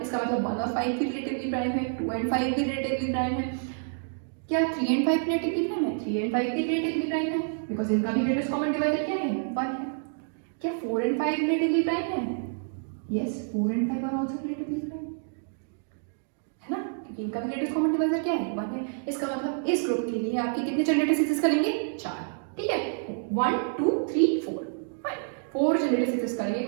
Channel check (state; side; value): silent; left; digital silence